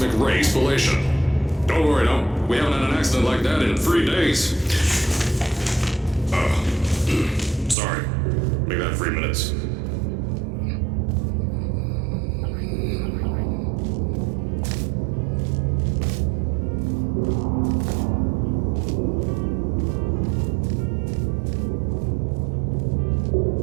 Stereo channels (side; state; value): left; drops out; at 7.8 s